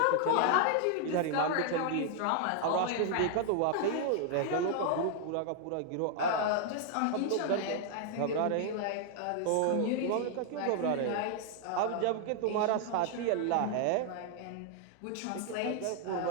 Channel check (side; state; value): both; different; correlation 0.00